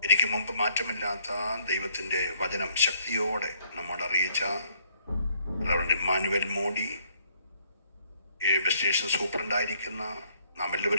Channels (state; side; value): inverted; both; correlation -0.66